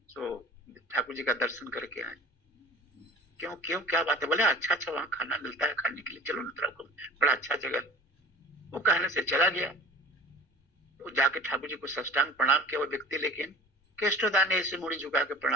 तो ठाकुर जी का दर्शन करके आए। क्यों क्यों क्या बात है? बोले अच्छा वहां खाना मिलता है खाने के लिए, चलो ना, बड़ा अच्छा जगह। वो कहने से चला गया। तो जाके ठाकुर जी को साष्टांग प्रणाम किया वो व्यक्ति, लेकिन केष्टोदा ने ऐसे मुड़ी झुका के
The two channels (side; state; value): both; normal; correlation 0.42